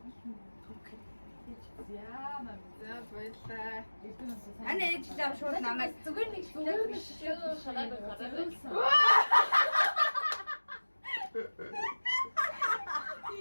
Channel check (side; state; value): both; inverted; correlation -1.00